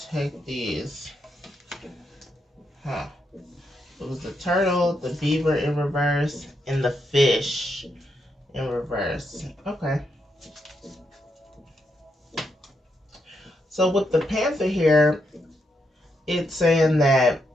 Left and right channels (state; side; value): normal; both; correlation 0.81